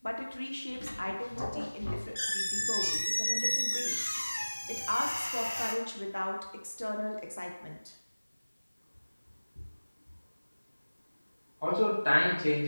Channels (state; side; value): inverted; both; correlation -1.00